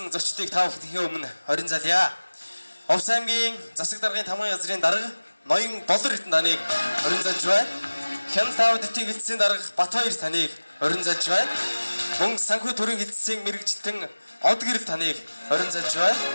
зочдыг та бүхэний өмнө хорин залъя. Овс аймгийн засаг даргын тамгын газрын дарга Ноён Болор хэдэн таныг хорин залж байна. Хяналт аудитын хэлтсийн дарга Батбаяр таныг хорин залж байна. Мөн санхүү төрийн хэлтсийн мэрэгжилтэн Од гэрэл таныг хорин залж байна.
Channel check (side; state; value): both; inverted; correlation -1.00